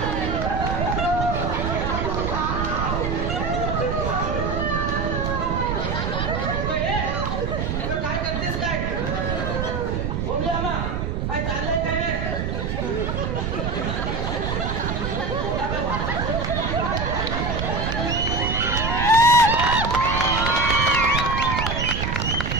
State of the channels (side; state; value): right; noise; rumble, 1 dB below the sound